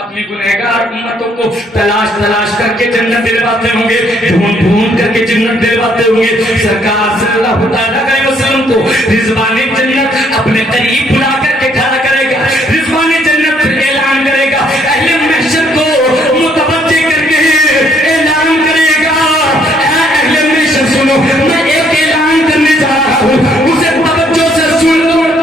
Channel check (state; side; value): normal; both; correlation 0.67